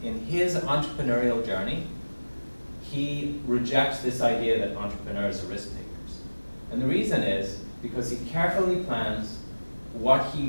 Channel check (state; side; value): inverted; both; correlation -1.00